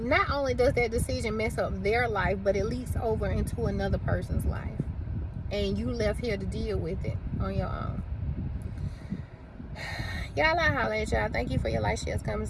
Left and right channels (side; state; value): both; identical; correlation 1.00